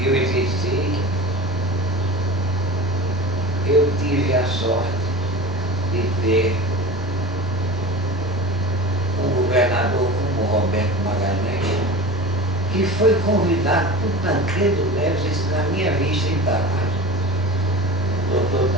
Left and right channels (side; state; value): both; normal; correlation 0.33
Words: eu exerci, eu tive a sorte de ter um governador como Roberto Magalhães, que foi convidado por Tancredo Neves, isso na minha vista em Palácio, o doutor